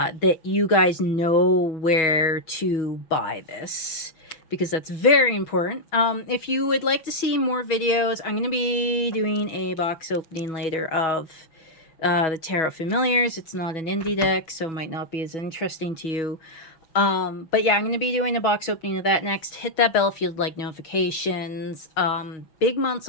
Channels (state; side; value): late; right; 6.1 ms